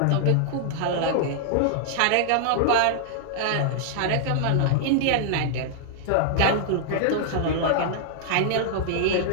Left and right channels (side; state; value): both; different; correlation -0.01